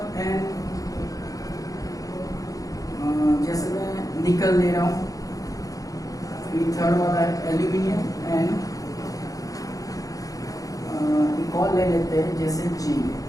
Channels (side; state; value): right; late; 0.17 ms